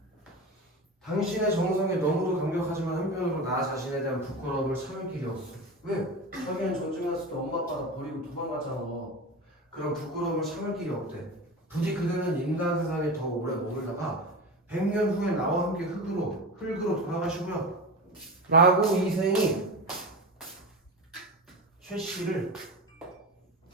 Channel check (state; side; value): normal; both; correlation 0.26